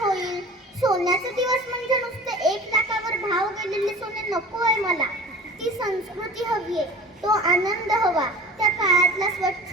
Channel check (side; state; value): both; normal; correlation 0.40